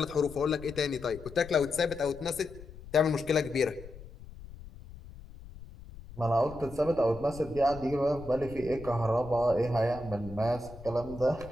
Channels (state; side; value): noise; left; rumble, 16 dB below the sound